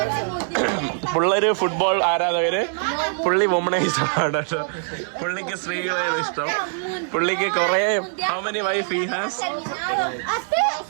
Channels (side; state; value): left; silent; digital silence